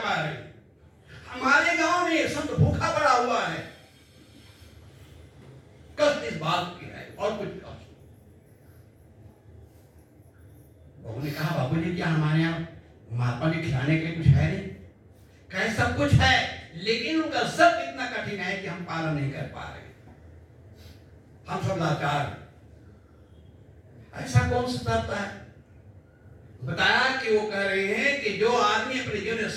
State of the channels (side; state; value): both; identical; correlation 1.00